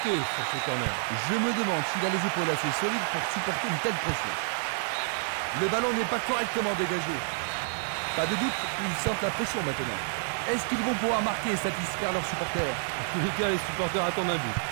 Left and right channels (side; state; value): left; silent; digital silence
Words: sur ce corner. Je me demande s'il a les épaules assez solides pour supporter une telle pression. Le ballon n'est pas correctement dégagé. Pas de doute, ils sentent la pression maintenant. Est-ce qu'ils vont pouvoir marquer et satisfaire leurs supporters? En tous les cas, les supporters attendent un but.